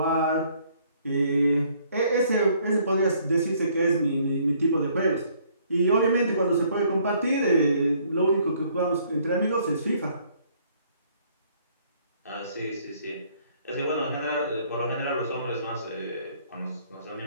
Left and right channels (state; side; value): inverted; both; correlation -0.64